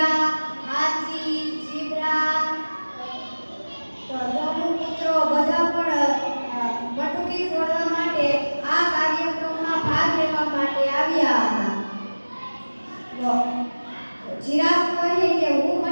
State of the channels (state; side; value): inverted; both; correlation -1.00